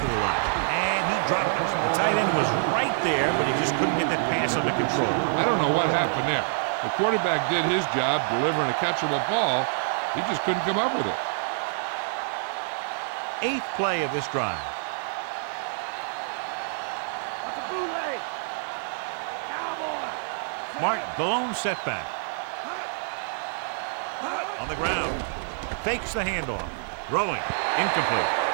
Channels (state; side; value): silent; left; 60 dB below the other